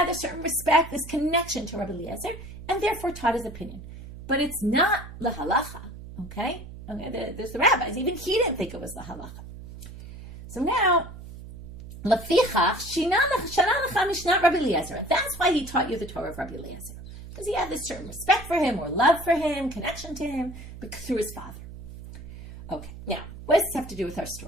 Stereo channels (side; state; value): right; noise; hum, 13 dB below the sound